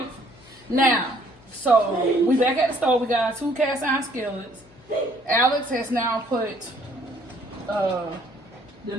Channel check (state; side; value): noise; left; hum, 26 dB below the sound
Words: Now, so we back at the stove. We got 2 cast iron skillets. Alex has now put The